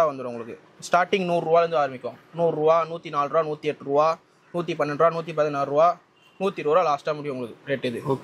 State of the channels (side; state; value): both; identical; correlation 1.00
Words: வந்துடும் உங்களுக்கு. ஸ்டார்டிங் 100 ரூபாலேருந்து ஆரம்பிக்கும். 100 ரூபா, 104 ரூபா, 108 ரூபா, 112 ரூபா, 116 ரூபா, 120 ரூபா லாஸ்ட்டாக முடியும் உங்களுக்கு ரேட். இது